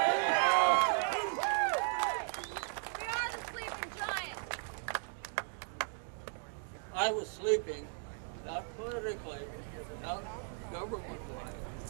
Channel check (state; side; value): silent; left; 53 dB below the other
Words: the sleeping giant. I was sleeping, not politically, not government-wise,